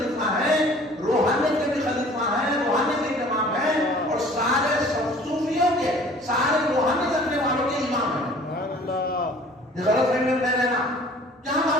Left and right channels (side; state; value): both; normal; correlation 0.50